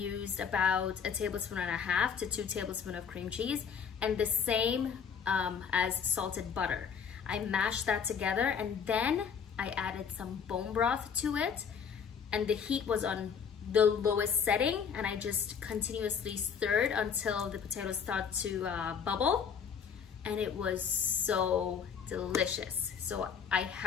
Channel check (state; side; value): quieter; right; 6.9 dB